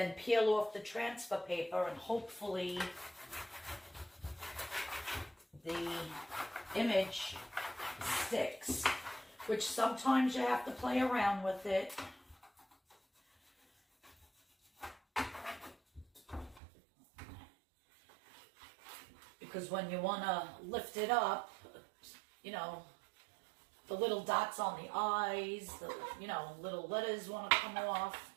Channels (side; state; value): left; drops out; at 16.6 s